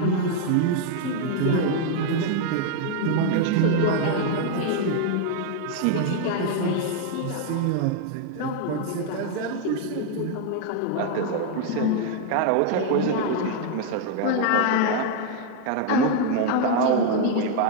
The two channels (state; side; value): different; both; correlation 0.00